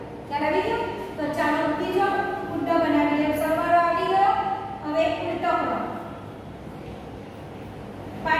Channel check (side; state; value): both; identical; correlation 1.00